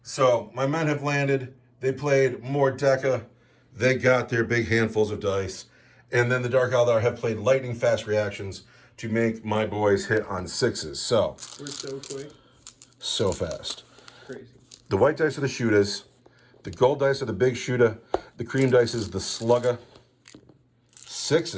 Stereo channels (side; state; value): both; identical; correlation 1.00